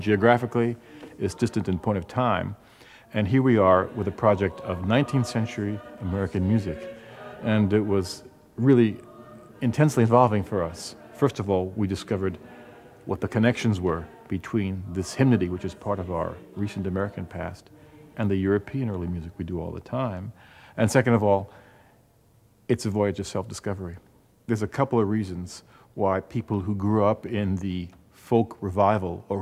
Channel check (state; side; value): identical; both; correlation 1.00